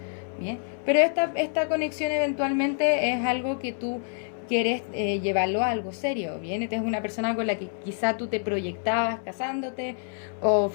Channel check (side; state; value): right; silent; 60 dB below the other